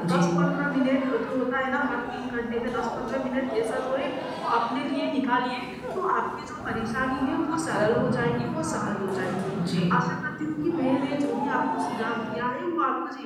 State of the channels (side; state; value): both; identical; correlation 1.00